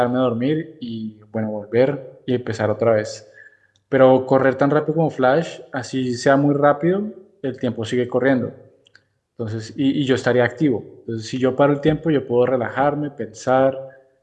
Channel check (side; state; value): both; identical; correlation 1.00